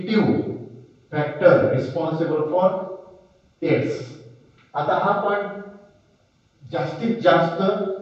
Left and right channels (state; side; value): identical; both; correlation 1.00